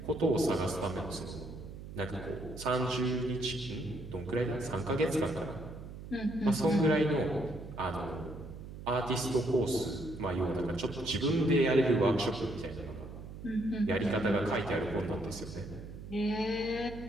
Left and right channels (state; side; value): noise; right; hum, 12 dB below the sound